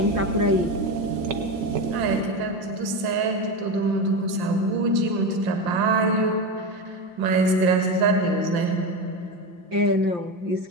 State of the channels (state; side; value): late; left; 5.7 ms